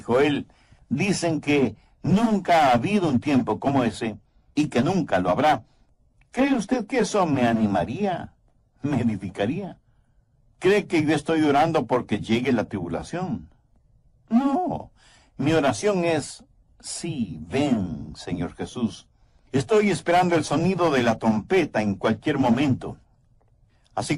dicen que nunca ha habido un tiempo como ese y que nunca lo habrá, ¿cree usted que eso me animaría? ¿Me edificaría? ¿Cree que yo estoy orando porque llegue la tribulación? No, mi oración es, sí, ven, Señor Jesús. Estoy esperando el sonido de la trompeta en cualquier momento. Así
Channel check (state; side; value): identical; both; correlation 1.00